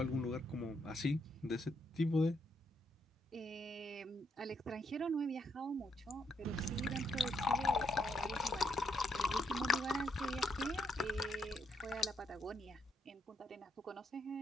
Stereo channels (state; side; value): normal; both; correlation 0.75